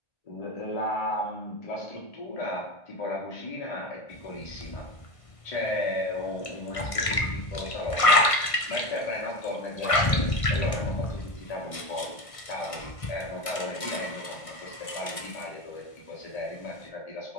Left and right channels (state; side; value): late; right; 1.5 ms